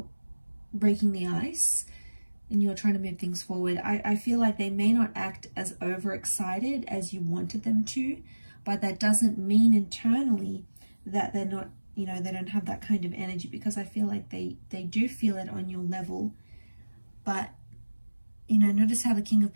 breaking the ice and you're trying to move things forward, I feel like they may not act as overexcited as you wanted them to. But that doesn't mean internally that they're not, they don't have that kind of energy, because I feel like they do feel it on your level. But, notice how the King of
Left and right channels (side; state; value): both; inverted; correlation -1.00